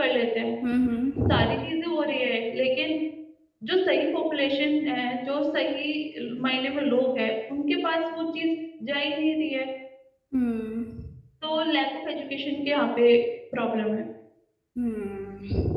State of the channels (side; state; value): both; identical; correlation 1.00